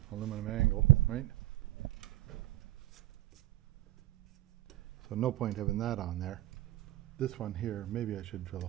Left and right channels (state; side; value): quieter; left; 16.6 dB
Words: aluminum angle, right? So no point having that on there. This one here, maybe I should drill a